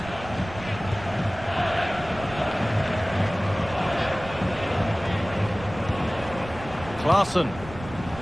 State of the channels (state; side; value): noise; right; rumble, 14 dB below the sound